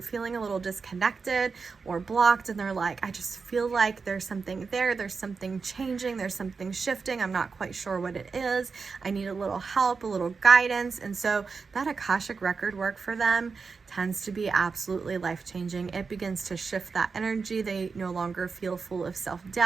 feeling a little disconnected or blocked, and they're like, I just feel like there's something there. There's something changing. There's something shifting. I'm not quite sure what it is. I need a little help, a little guidance. And so that Akashic Record work for them tends to be absolutely life-changing. It begins to shift that energy. They no longer feel full of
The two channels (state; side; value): quieter; left; 4.9 dB